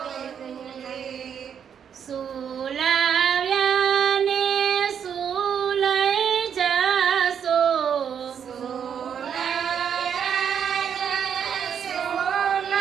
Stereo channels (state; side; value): quieter; left; 8.0 dB